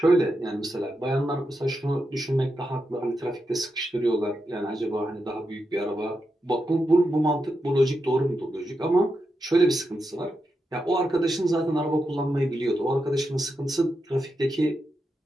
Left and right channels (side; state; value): both; normal; correlation 0.86